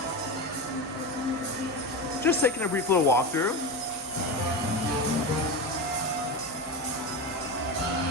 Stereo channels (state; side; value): normal; both; correlation 0.20